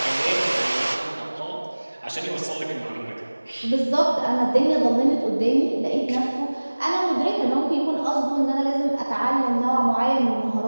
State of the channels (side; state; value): both; inverted; correlation -1.00